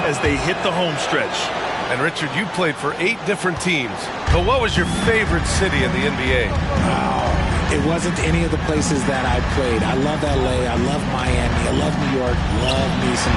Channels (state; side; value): identical; both; correlation 1.00